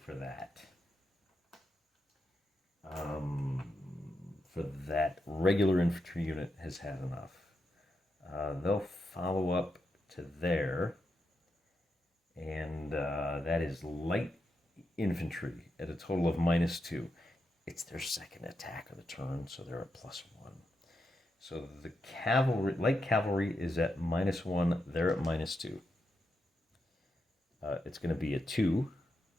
that. For that, regular infantry unit has had enough. They'll follow up to there. And that is light infantry at a total of -2. It's their second attack of the turn, so they're at +1. So the cavalry, light cavalry is at -1. They're at -2. It's going to be a 2.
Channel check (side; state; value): both; normal; correlation 0.85